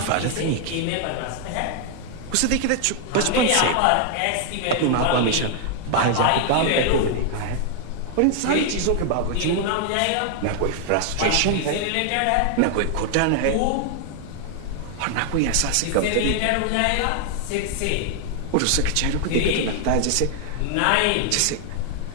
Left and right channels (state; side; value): different; both; correlation 0.00